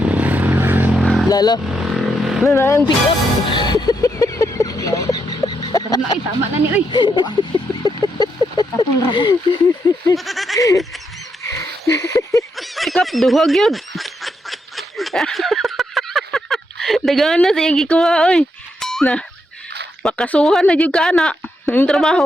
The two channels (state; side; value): normal; both; correlation 0.80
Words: Lalo. Na ang pick up. Tara na, tama na ni, uy. Tapong rabo. Pick up, duhag yun. Dagana sa iyang gikuha, oy. Na, makasuhan na yung kana. Yung